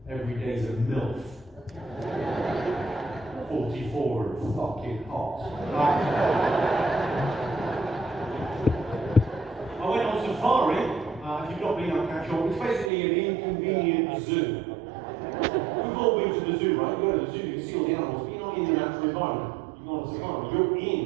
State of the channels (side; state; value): left; drops out; at 12.9 s